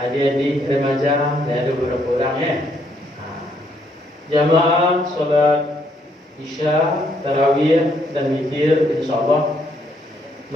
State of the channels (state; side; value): normal; both; correlation 0.71